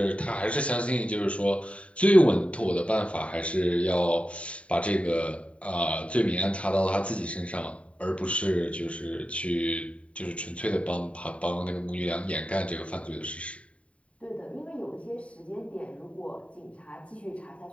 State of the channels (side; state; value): right; late; 0.064 ms